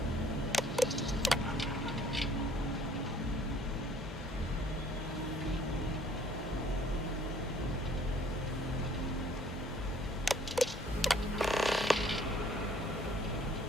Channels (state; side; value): normal; both; correlation 0.58